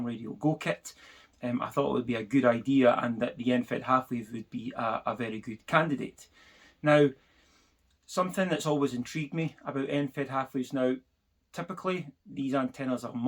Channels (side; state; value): both; identical; correlation 1.00